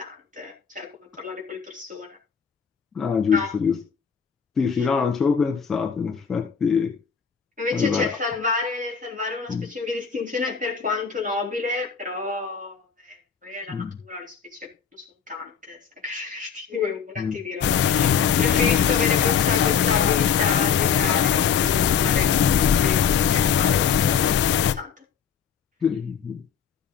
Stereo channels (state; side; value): quieter; right; 7.1 dB